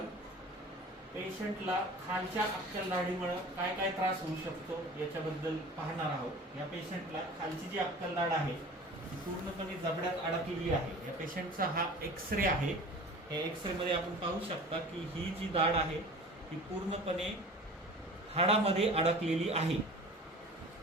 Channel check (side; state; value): both; normal; correlation 0.40